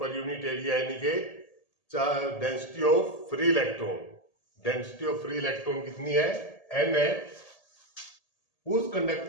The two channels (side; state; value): right; late; 1.8 ms